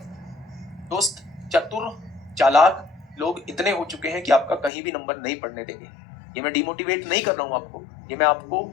दोस्त, चतुर चालाक लोग इतने हो चुके हैं कि आपका कहीं भी नंबर नहीं पढ़ने देंगे। ये मैं डिमोटिवेट नहीं कर रहा हूं आपको, ये मैं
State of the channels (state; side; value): drops out; right; at 4.7 s